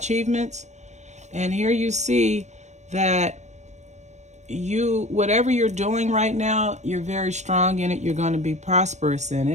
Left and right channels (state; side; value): late; left; 0.34 ms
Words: And here you see that whatever you're doing right now, you're very strong in it. You're going to be prosperous in